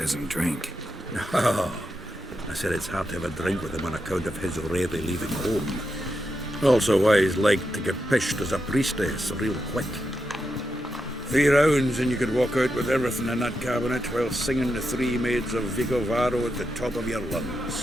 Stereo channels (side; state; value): both; normal; correlation 0.86